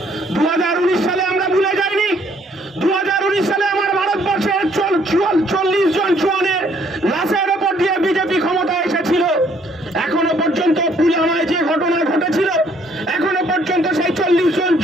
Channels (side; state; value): both; normal; correlation 0.64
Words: 2019 সালে আমরা ভুলে যাইনি। 2019 সালে আমার ভারতবর্ষের 40 জন জওয়ানের লাশের ওপর দিয়ে বিজেপি ক্ষমতা এসেছিল। এখনো পর্যন্ত পুলওয়ামায় যে ঘটনা ঘটেছিল, এখনো পর্যন্ত সেই 40 জন